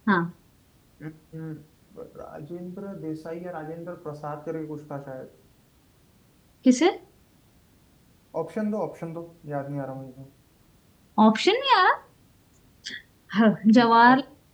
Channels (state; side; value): identical; both; correlation 1.00